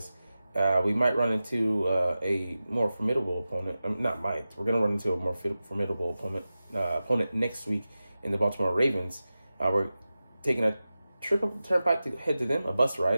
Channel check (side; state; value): both; inverted; correlation -0.94